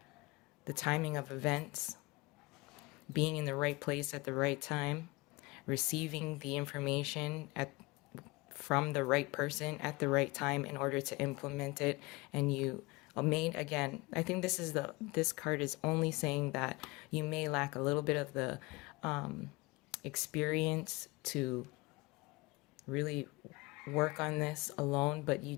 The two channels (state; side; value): quieter; right; 23.8 dB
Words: the timing of events, being in the right place at the right time, receiving the information from the right person at the right time in order to implement it. And you again, I think this card is only saying that you may lack a little bit of the experience to really work on this alone, but you